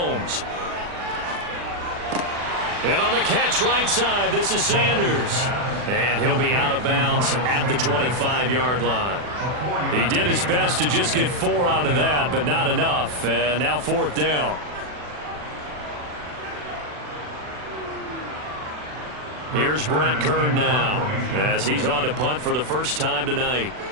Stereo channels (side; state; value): left; late; 40 ms